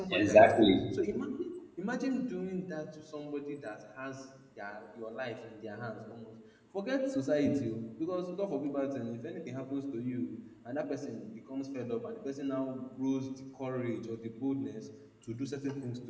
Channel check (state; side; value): identical; both; correlation 1.00